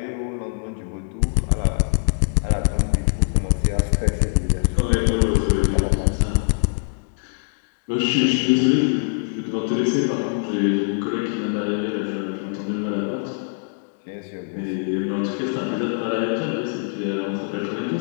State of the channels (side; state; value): right; silent; 64 dB below the other